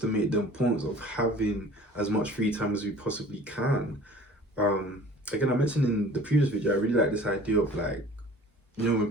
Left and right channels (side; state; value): both; normal; correlation 0.47